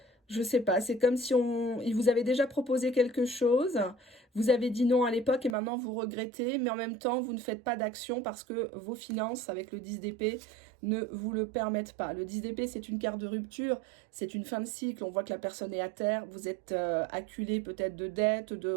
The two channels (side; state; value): left; drops out; at 5.6 s